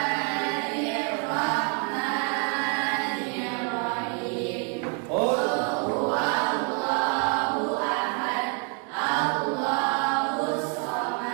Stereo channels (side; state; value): left; quieter; 36.2 dB